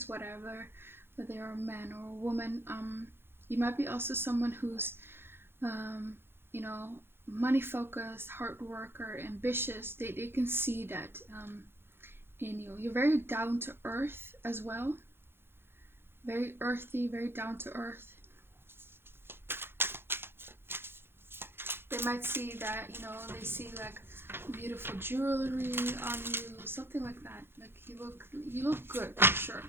whatever, whether you're a man or a woman. You might be also someone who's, you know, money focused, hard worker, ambitious. They can see that in you. You're very down to earth as well. Very earthy, very down to earth. They might see that, you know, they see like beautiful jewelry on you, something like that. Like you look good for sure.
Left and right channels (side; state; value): left; late; 0.11 ms